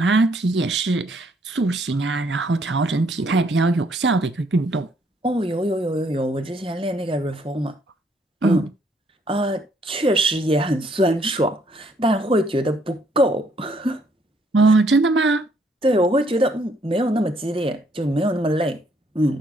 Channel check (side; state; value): both; normal; correlation 0.68